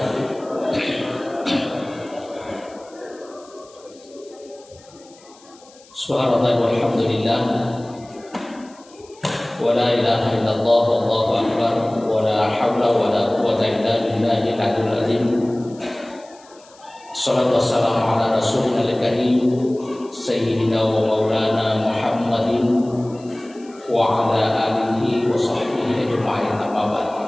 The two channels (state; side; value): noise; left; hiss, 26 dB below the sound